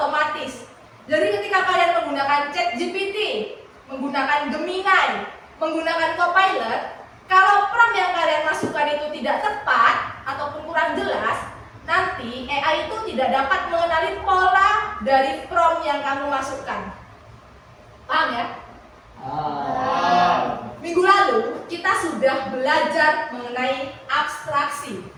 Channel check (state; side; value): identical; both; correlation 1.00